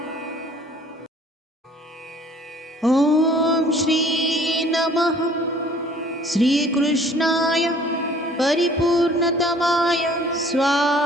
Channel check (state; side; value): normal; both; correlation 0.54